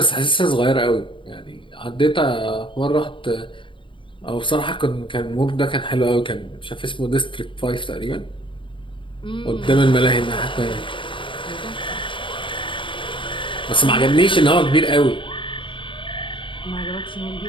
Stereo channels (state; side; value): late; right; 0.24 ms